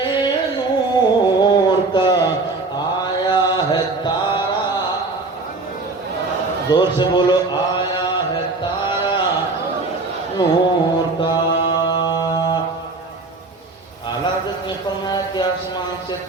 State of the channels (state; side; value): quieter; left; 3.5 dB